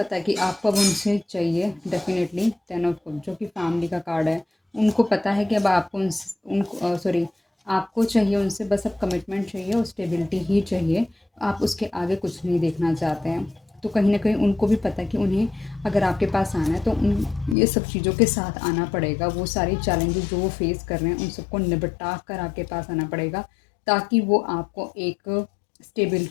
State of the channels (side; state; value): right; drops out; at 17.6 s